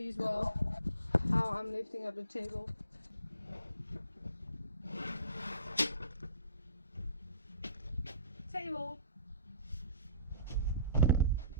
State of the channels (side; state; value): both; inverted; correlation -0.47